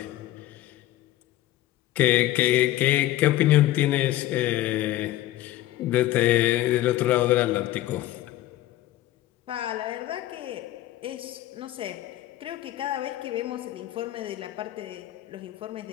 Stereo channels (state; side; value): quieter; right; 15.0 dB